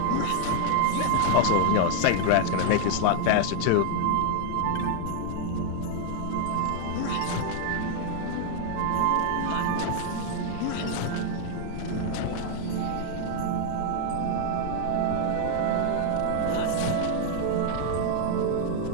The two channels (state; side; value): different; both; correlation 0.00